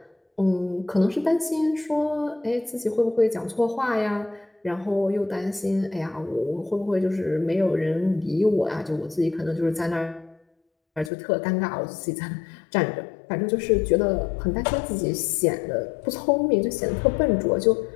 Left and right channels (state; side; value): drops out; right; at 11.1 s